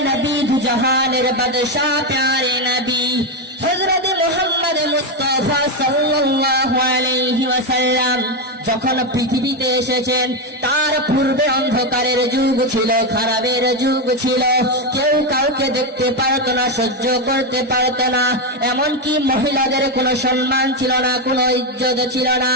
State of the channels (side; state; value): both; normal; correlation 0.08